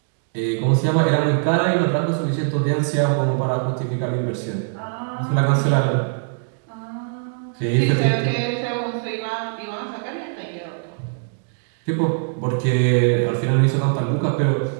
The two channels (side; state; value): left; silent; digital silence